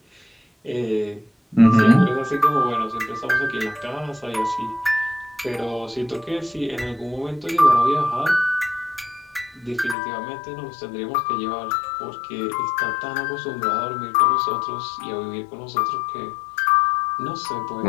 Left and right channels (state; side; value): drops out; right; at 10.0 s